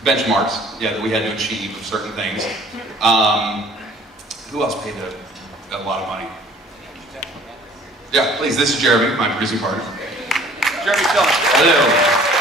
benchmarks, yeah, that we had to achieve of certain things. Who else paid a lot of money? Yeah, please. This is Jeremy, my producing partner. Jeremy, tell us. Hello.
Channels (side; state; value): both; normal; correlation 0.53